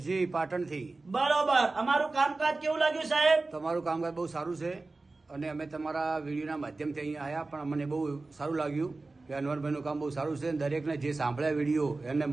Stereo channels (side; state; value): left; quieter; 3.4 dB